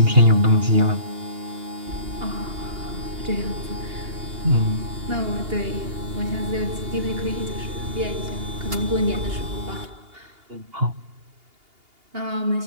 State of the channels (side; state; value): left; late; 2.8 ms